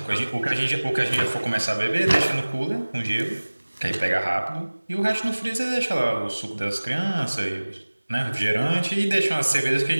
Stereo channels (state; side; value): inverted; both; correlation -1.00